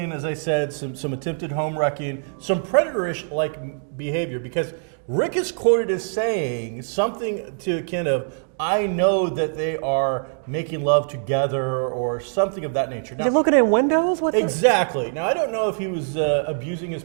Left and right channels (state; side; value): silent; left; digital silence